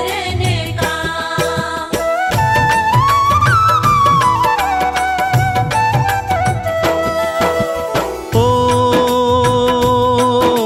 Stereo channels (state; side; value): identical; both; correlation 1.00